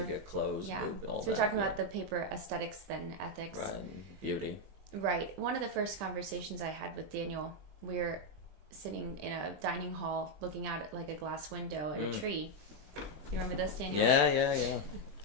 get close. Yeah, all so we're talking about the paper aesthetics then ethics. Right, beauty. Right. One of the first conversations I had with Daniel, we were sitting in a dining hall looking out at like a glass window and a tree. You remember this, Daniel? Yeah.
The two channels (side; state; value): left; late; 20 ms